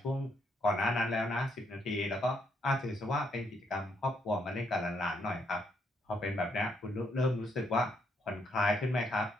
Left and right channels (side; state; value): both; normal; correlation 0.74